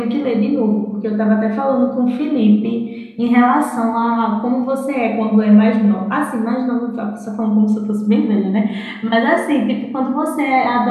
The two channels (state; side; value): identical; both; correlation 1.00